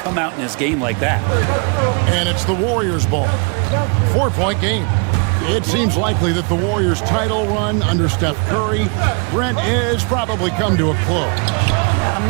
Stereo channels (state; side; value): quieter; left; 35.5 dB